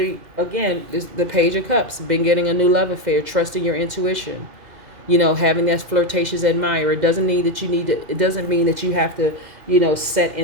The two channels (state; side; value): late; left; 2.0 ms